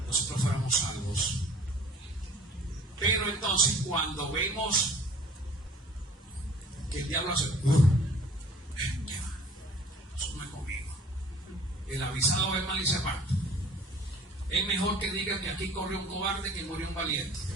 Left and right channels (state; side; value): normal; both; correlation 0.50